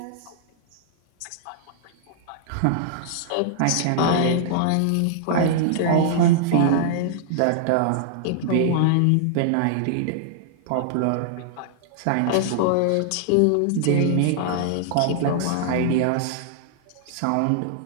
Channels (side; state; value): both; different; correlation -0.01